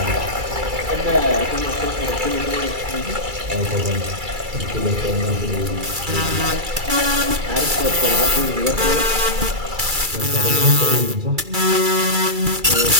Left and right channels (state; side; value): late; left; 2.3 ms